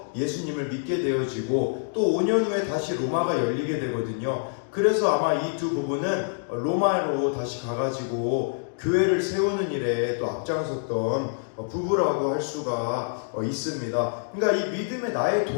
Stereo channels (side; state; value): right; silent; digital silence